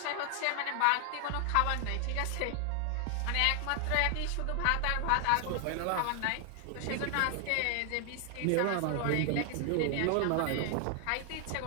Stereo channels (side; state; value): both; different; correlation 0.00